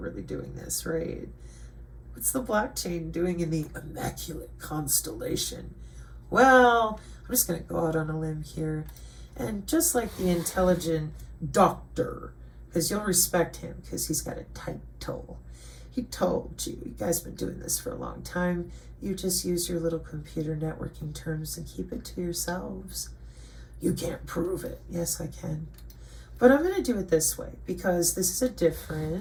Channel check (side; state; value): both; identical; correlation 1.00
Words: doing this, right? What's the blockchain doing in the immaculate constellation? Well, I'm just going to go out on a limb here. And just like the intelligent doctor, because you'll respect him because he's got a title. He told you, you guys been doing this for a long time. You just use your little computer networking terms and keep it to yourselves. You can't prove it. Yes, I can. But I'm going to do it this way because this is a